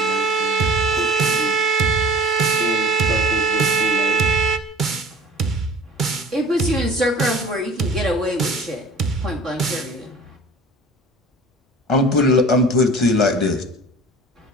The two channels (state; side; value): normal; both; correlation 0.43